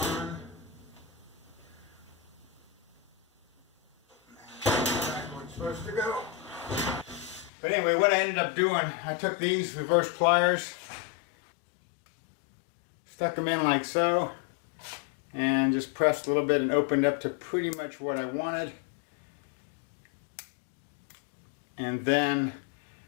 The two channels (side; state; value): right; drops out; at 7.5 s